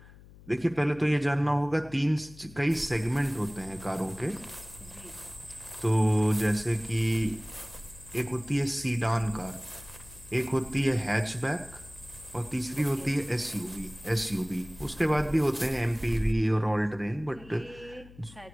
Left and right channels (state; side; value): noise; left; hum, 21 dB below the sound